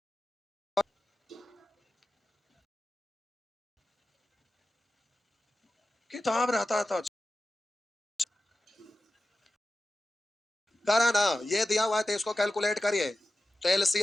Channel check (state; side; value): normal; both; correlation 0.93